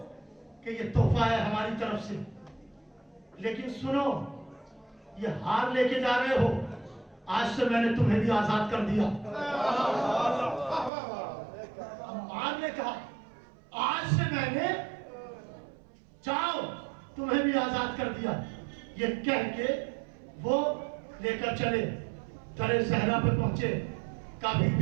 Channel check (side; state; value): left; drops out; at 10.9 s